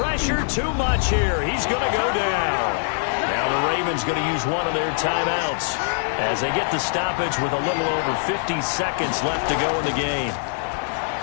too much here. He's going to go down. Now the Ravens going to use one of their timeouts as they get the stoppage with a little over 50 seconds left to go in the game.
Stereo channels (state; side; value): silent; right; digital silence